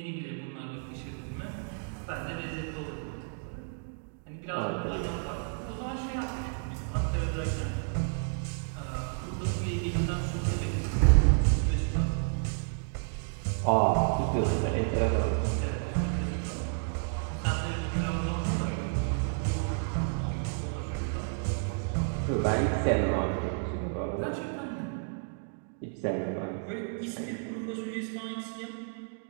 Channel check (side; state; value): left; silent; 57 dB below the other